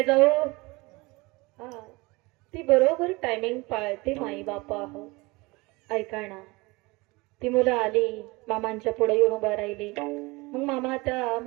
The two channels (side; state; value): left; quieter; 24.0 dB